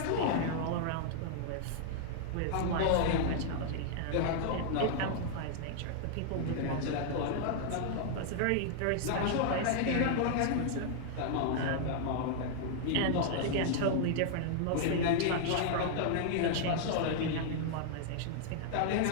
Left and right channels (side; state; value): both; different; correlation -0.01